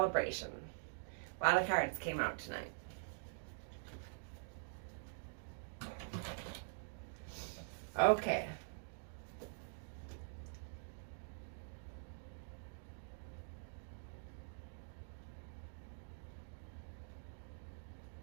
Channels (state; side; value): silent; left; digital silence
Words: A lot of cards came out tonight. Okay.